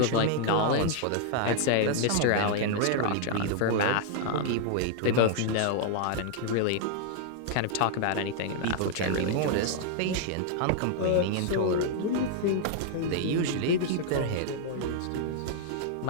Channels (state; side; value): different; both; correlation -0.01